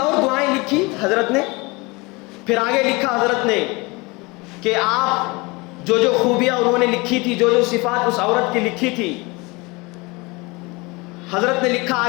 دعائیں لکھی حضرت نے، پھر آگے لکھا حضرت نے کہ آپ جو خوبیاں انہوں نے لکھی تھی، جو صفات اس عورت کی لکھی تھی، حضرت نے لکھا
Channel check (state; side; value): quieter; right; 25.5 dB